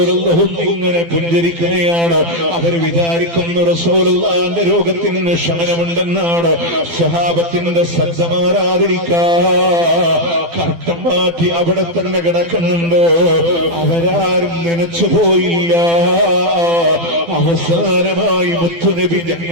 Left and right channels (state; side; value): late; left; 12 ms